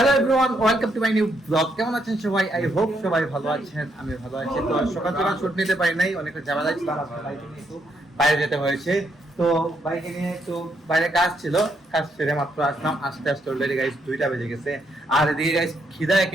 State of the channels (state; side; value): normal; both; correlation 0.76